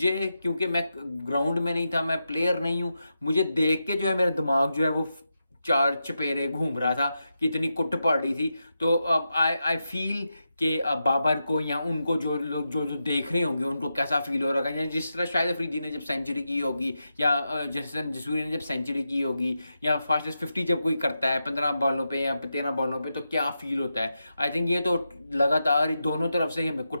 क्योंकि मैं ग्राउंड में नहीं था, मैं प्लेयर नहीं हूँ, मुझे देख के जो है मेरा दिमाग जो है वो चार चपेरे घूम रहा था कि इतनी कुट पड़ रही थी। तो आई आई फील कि बाबर को या उनको जो लोग जो जो देख रहे होंगे उनको कैसा फील हो रहा है। या जिस तरह शायद अफरीदी ने जब सेंचुरी की होगी, या जसन जसूरी ने जब सेंचुरी की होगी, या फास्टेस्ट 50 जब कोई करता है 15 बॉलों पे या 13 बॉलों पे, तो क्या फील होता है। आई थिंक ये तो लगातार दोनों तरफ से हमें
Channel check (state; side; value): inverted; both; correlation -0.88